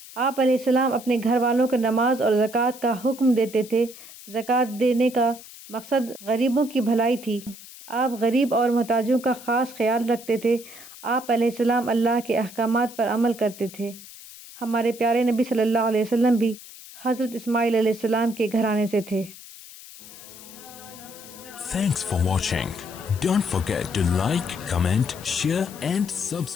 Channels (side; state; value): left; noise; hiss, 17 dB below the sound